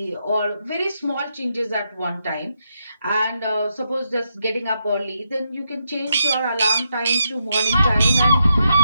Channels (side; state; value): both; inverted; correlation -0.82